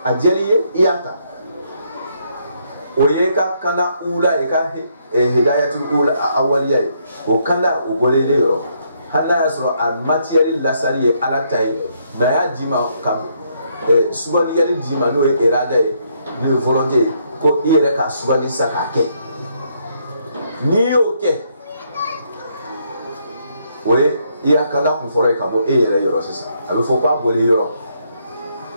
ajeliye iyata oyeka kana ula eka hidayatul ula awaliya o kana o golele yoro hana yasro al material lasari ala tay na ya dima kam subali yali dima no erada ni volonté ko ire ka subali sakake ni oke oye iya kana ku fore kamo ire yoro sesa abe fo kwa bole yoro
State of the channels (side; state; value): both; inverted; correlation -0.73